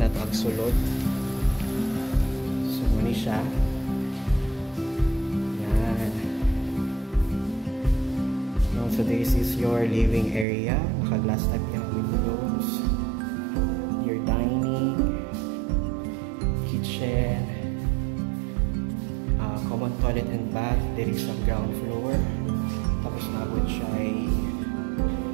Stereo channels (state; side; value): drops out; left; at 10.5 s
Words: to ang sulod. So muni siya. Yan. So this is your living area. Naka-glass type yung windows. Your dining, kitchen, common toilet and bath. There is some ground floor. Tapos nabot siya ay